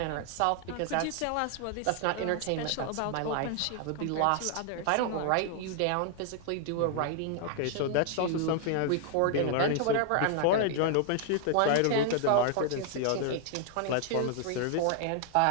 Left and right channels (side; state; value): both; different; correlation 0.00